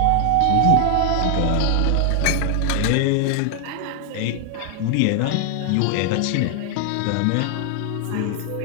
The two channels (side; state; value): both; different; correlation 0.00